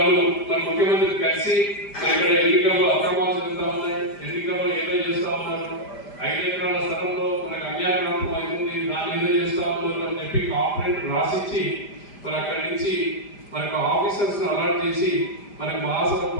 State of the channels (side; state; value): right; late; 5.0 ms